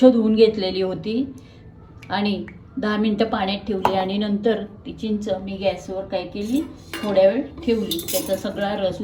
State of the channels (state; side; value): identical; both; correlation 1.00